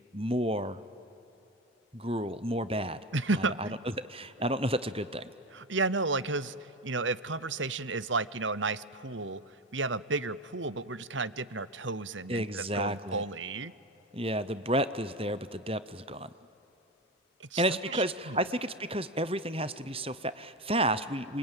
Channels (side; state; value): both; normal; correlation 0.21